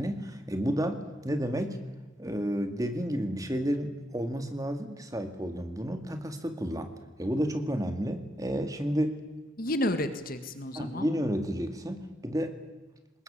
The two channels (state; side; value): normal; both; correlation 0.81